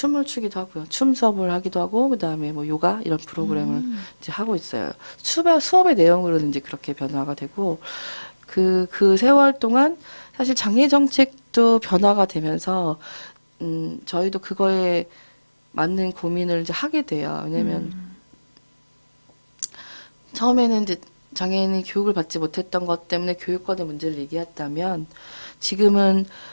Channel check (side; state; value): both; inverted; correlation -1.00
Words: 추기도 하고요. 춤 수업을 하기도 하고 그다음에 뭐 요가 이런 프로그램을 이제 하고 있어요. 수업의 내용으로는 이제 그렇게 변화가 되고 그 세월 동안 사실 장애 정책도 변화가 되면서 저희도 그거에 맞는 고민을 이제 하게 돼요. 왜냐면 처음에는 이제 장애인이 교육을 받지 못했던 것 때문에 교육권의 문제를 얘기했다면 지금은